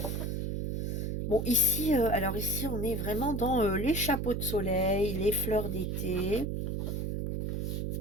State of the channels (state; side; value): noise; right; hum, 1 dB below the sound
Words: bon ici, alors ici on est vraiment dans les chapeaux de soleil, les fleurs d'été.